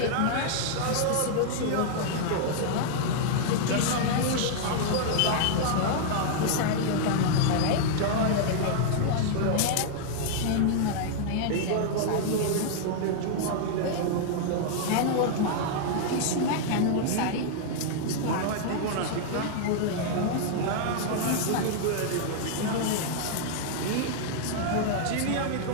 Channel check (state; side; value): different; both; correlation -0.01